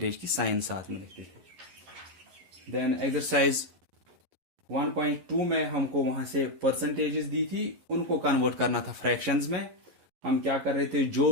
की साइन साथ में लिखते थे। देन एक्सरसाइज 1.2 में हमको वहां से परसेंटेजेस दी थी, उनको कन्वर्ट करना था फ्रैक्शंस में। हम क्या कर रहे थे,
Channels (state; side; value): late; left; 11 ms